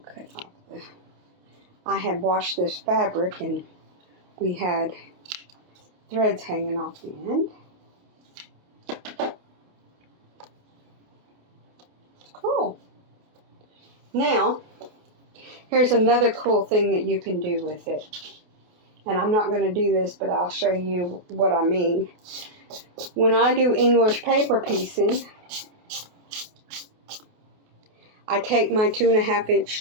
off the. I had washed this fabric and we had threads hanging off the end. Cool. Now, here's another cool thing that you can do with it. And I'm not going to do this, but I'll show you what I mean. When I do English paper piecing, I take my 2.5 inch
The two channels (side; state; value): left; late; 28 ms